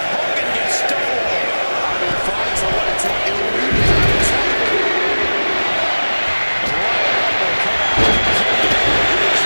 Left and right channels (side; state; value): both; inverted; correlation -1.00